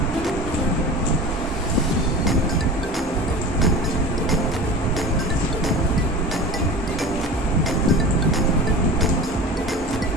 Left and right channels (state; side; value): normal; both; correlation 0.34